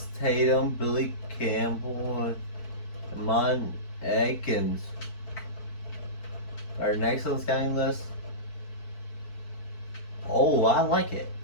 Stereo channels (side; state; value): right; late; 4.5 ms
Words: Tatum, Billy Campbell, and Mon Atkins are next on the scouting list. Oh, I like it.